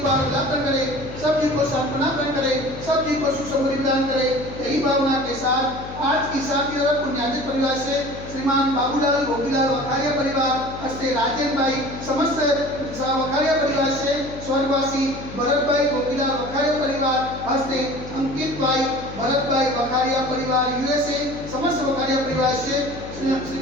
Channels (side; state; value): left; noise; hum, 12 dB below the sound